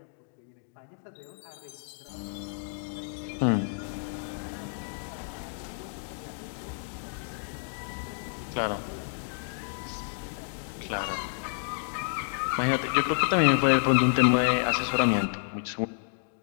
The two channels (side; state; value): right; silent; digital silence